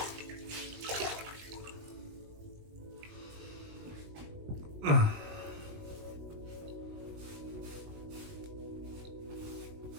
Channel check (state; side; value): late; left; 20 ms